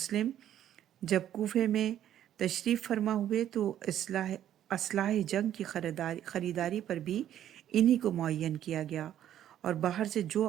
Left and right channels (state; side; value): quieter; left; 11.2 dB